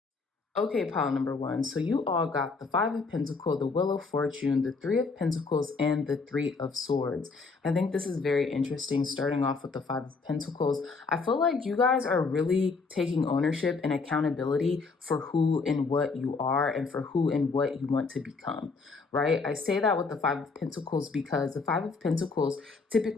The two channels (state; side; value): quieter; right; 4.3 dB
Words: Okay, pile number 1. So you all got the 5 of Pentacles, the Wheel of Fortune, the 3 of Pentacles, and the 3 of Swords. I think this is very interesting, starting off with the 5 of Pentacles. I feel like you guys are really taking ownership and accountability for who and what you are and for who and what you want to become, right? I say that with the 5 of Pentacles because the 5 of Pentacles